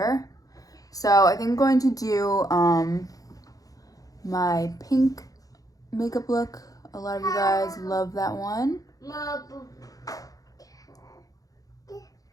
So I think I'm going to do my pink makeup look. A lot of you guys love that one.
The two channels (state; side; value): late; right; 0.17 ms